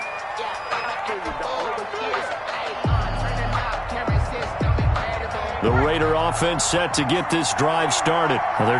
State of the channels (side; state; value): both; identical; correlation 1.00